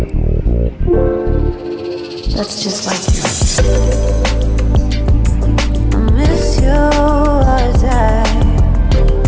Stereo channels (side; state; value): both; identical; correlation 1.00